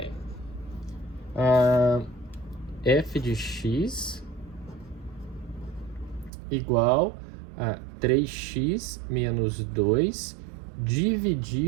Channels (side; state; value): left; drops out; at 6.3 s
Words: F de x igual a 3x menos 2